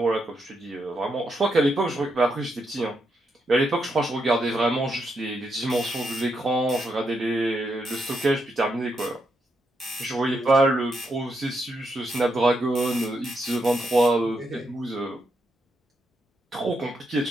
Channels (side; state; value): both; normal; correlation 0.81